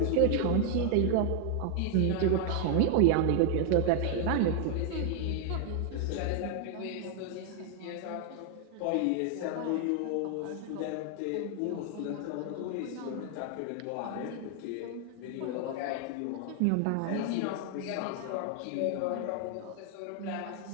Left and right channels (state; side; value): different; both; correlation 0.00